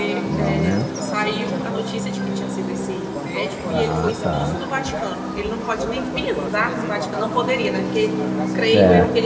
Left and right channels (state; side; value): identical; both; correlation 1.00